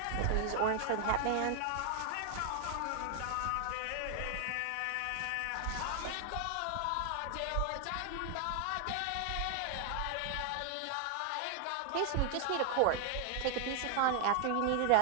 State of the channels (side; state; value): both; different; correlation 0.00